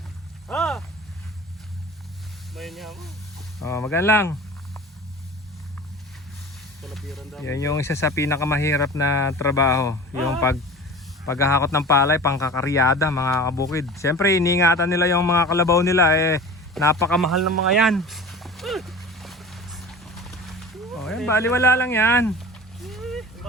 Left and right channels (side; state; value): both; normal; correlation 0.37